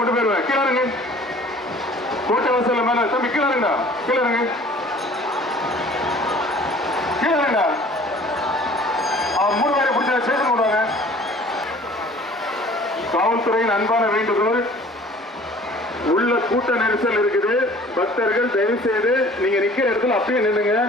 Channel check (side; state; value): both; normal; correlation 0.50